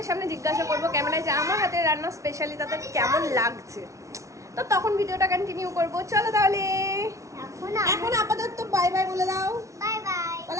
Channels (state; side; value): late; left; 0.15 ms